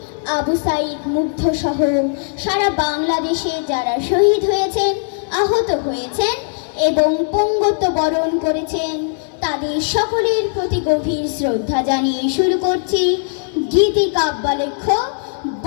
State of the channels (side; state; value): right; silent; 67 dB below the other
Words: আবু সাইদ মুগ্ধ সহ সারা বাংলাদেশে যারা শহীদ হয়েছেন, আহত হয়েছেন এবং পঙ্গত্ব বরণ করেছেন, তাদের সকলের প্রতি গভীর শ্রদ্ধা জানিয়ে শুরু করছি গীতি কাব্যালেখ্য